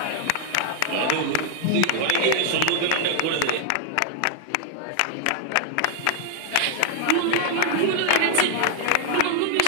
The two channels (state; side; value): different; both; correlation 0.00